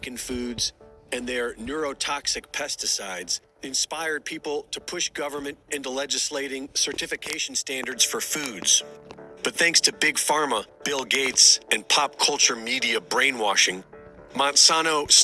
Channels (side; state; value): both; identical; correlation 1.00